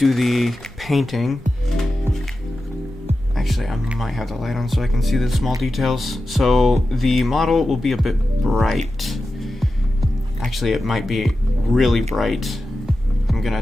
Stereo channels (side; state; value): both; normal; correlation 0.92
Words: the painting, actually I might have the light on so I can see the small details. So the model will be a bit bright. Actually it might be really bright. I'm going to